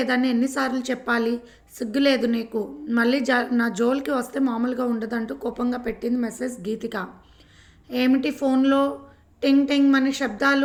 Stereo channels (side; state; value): both; identical; correlation 1.00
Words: ఎన్నిసార్లు చెప్పాలి? సిగ్గులేదు నీకు? మళ్ళీ నా జోలికి వస్తే మామూలుగా ఉండదంటూ కోపంగా పెట్టింది మెసేజ్ గీతిక. ఏమిటి ఫోన్లో టింగ్ టింగ్ మని